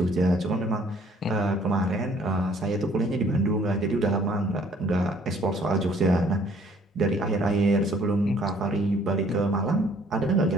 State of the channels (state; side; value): normal; both; correlation 0.60